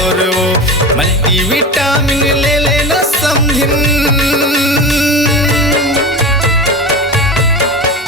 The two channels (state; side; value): normal; both; correlation 0.28